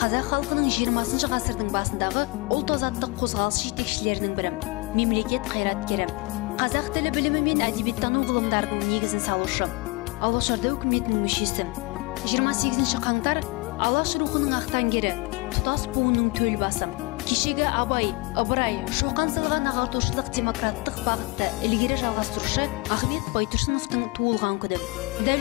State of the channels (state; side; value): quieter; right; 25.1 dB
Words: халқының 20 ғасырдың басындағы ұлт азаттық қозғалыс жетекшілерінің бірі, мемлекет қайраткері, қазақ тілі білімі мен әдебиеттану ғылымдарының негізін салушы, Алашорда үкіметінің мүшесі. 28 қаңтар Алаш рухының ақтаңгері, тұтас буынның төл басы. Кешегі Абай, Ыбырай, Шоқан салған ағартушылық демократтық бағытты ілгері жалғастырушы Ахмет Байтұрсыновтың туылған күні.